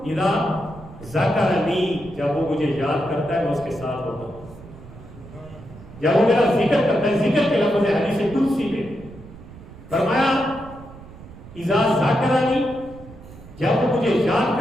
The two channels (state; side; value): noise; right; rumble, 18 dB below the sound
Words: اذا ذکرنی، جب وہ مجھے یاد کرتا ہے میں اس کے ساتھ ہوتا ہوں، جب وہ میرا ذکر کرتا ہے، ذکر کے لفظ ہے حدیث قدسی میں، فرمایا اذا ذکرنی، جب وہ مجھے یاد